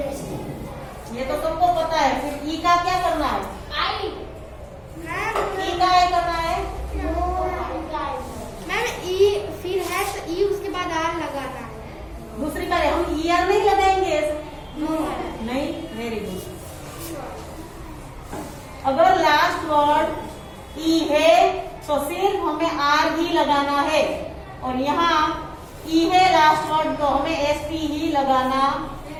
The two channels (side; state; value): both; identical; correlation 1.00